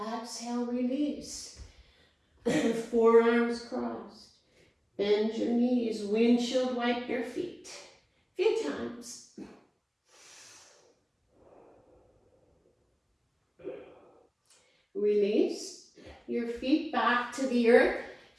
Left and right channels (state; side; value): identical; both; correlation 1.00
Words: release. Forearms crossed. Bend your knees. Windshield wipe your feet. A few times. Release your feet back to the earth.